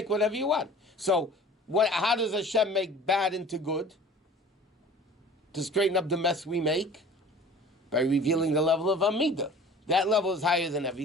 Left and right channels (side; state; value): both; normal; correlation 0.45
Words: whatever you want. So, how does Hashem make bad into good? To straighten up the mess we make? By revealing the level of Amidah. That level is higher than